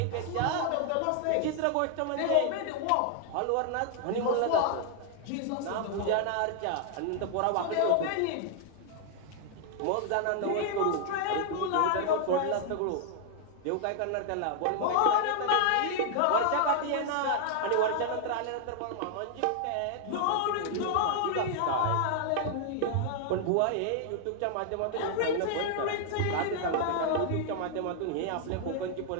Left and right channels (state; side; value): different; both; correlation 0.00